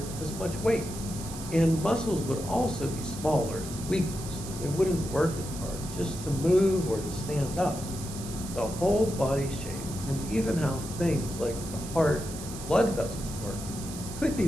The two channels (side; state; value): right; noise; hiss, 12 dB below the sound